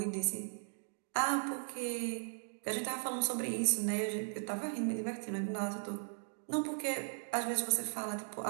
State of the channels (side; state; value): left; silent; digital silence